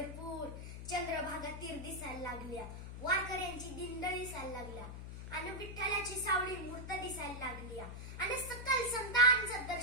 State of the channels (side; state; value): left; noise; hum, 9 dB below the sound